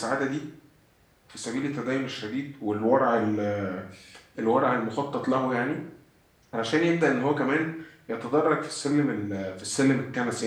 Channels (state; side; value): identical; both; correlation 1.00